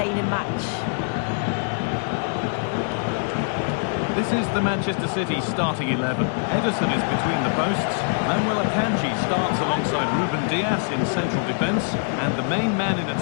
match. This is the Manchester City starting 11. Ederson is between the posts. Manuel Akanji starts alongside Ruben Dias in central defence. And the main man in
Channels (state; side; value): silent; right; 63 dB below the other